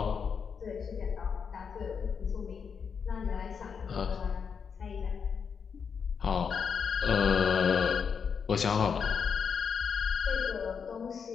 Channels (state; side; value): quieter; right; 6.4 dB